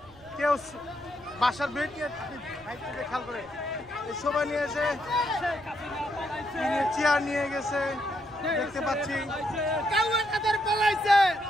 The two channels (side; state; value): right; noise; rumble, 25 dB below the sound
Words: কেউ বাসার বেড নিয়ে খেয়াল করে সবাই নিয়েছে, চেয়ার নিয়ে গেছে দেখতে পাচ্ছি।